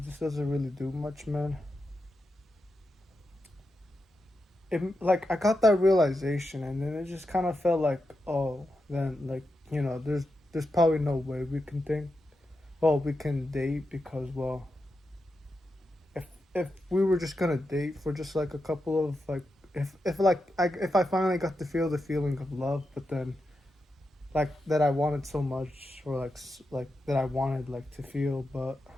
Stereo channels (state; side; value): normal; both; correlation 0.88